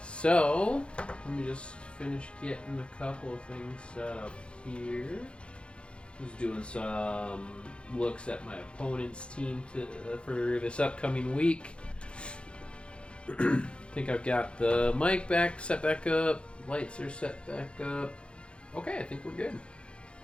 So let me just finish getting a couple of things set up here. Just doing some looks at my opponent's team for this upcoming week. I think I've got the mic set back up. Lights are set back up. Okay, I think we're good.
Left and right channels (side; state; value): right; late; 0.057 ms